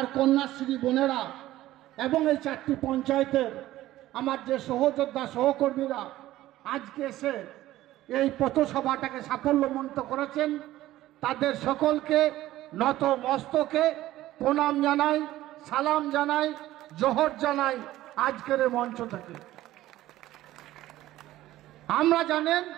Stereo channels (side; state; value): left; quieter; 15.2 dB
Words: কন্যাশ্রী বোনেরা এবং এই 4টি পঞ্চায়েতের আমার যে সহযোদ্ধা সহকর্মীরা আজকে এসে এই পথসভাটাকে সাফল্যমণ্ডিত করেছেন, তাদের সকলকে নত মস্তকে প্রণাম জানাই, সালাম জানাই, জোহর জানাই আজকের এই মঞ্চ থেকে।